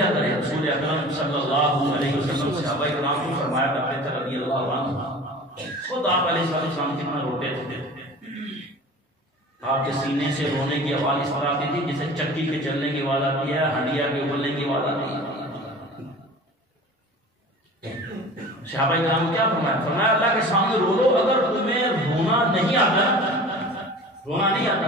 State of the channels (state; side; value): normal; both; correlation 0.40